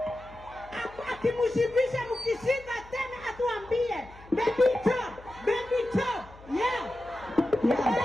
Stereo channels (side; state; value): left; noise; hum, 21 dB below the sound